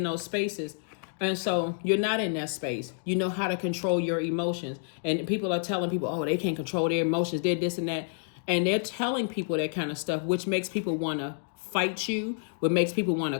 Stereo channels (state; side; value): silent; right; digital silence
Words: those spaces, and so you're not in that space. You know how to control your emotions. And people are telling people, oh, they can't control their emotions. They're this and that. And they're telling people that kind of stuff, which makes people want to fight you, what makes people want to